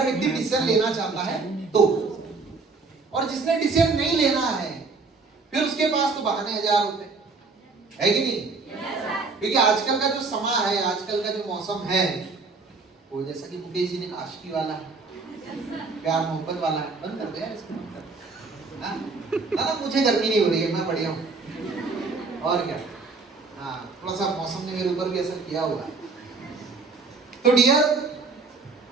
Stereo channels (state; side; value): quieter; left; 4.2 dB